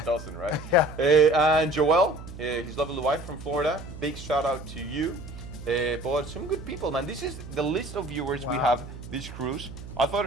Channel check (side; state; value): right; noise; hum, 13 dB below the sound